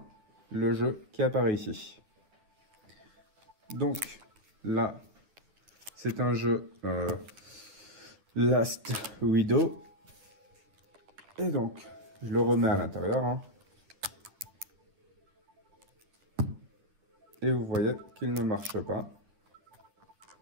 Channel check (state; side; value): late; left; 9.8 ms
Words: le jeu qui apparaît ici. Donc là, c'est un jeu Last Widow. Et donc, je le remets à l'intérieur. Hein. Et vous voyez qu'il ne marche pas.